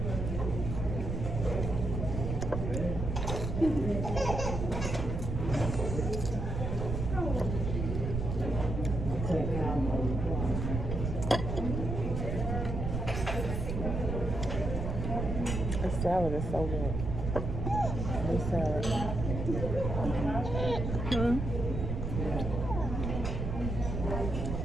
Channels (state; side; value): noise; right; rumble, 3 dB below the sound